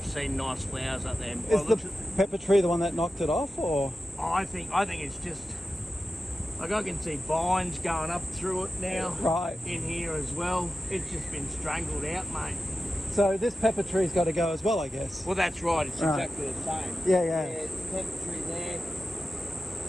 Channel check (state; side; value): normal; both; correlation 0.92